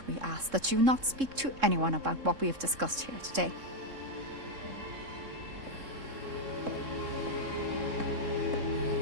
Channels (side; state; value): left; late; 3.7 ms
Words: we ask that you not speak to anyone about what we have discussed here today.